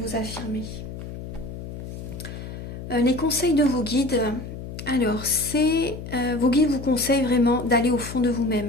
affirmer. Les conseils de vos guides. Alors, vos guides vous conseillent vraiment d'aller au fond de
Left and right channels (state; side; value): noise; left; hum, 10 dB below the sound